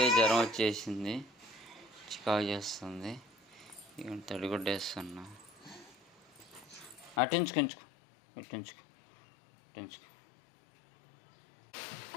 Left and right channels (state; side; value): drops out; right; at 7.2 s